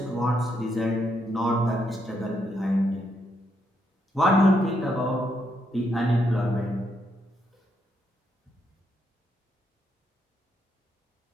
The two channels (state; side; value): normal; both; correlation 0.78